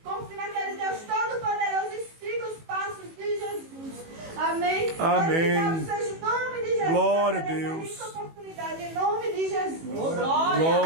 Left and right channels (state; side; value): late; left; 18 ms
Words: confie naquele Deus Todo-Poderoso e siga os passos de Jesus. Amém? Amém. Glorificado seja o nome de Jesus. Glória a por essa Deus. rica oportunidade, em nome de Jesus.